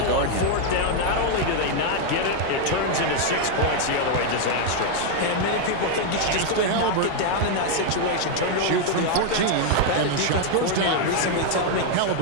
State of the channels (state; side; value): different; both; correlation 0.01